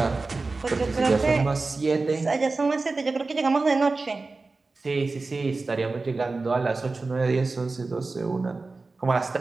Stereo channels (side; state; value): left; quieter; 3.7 dB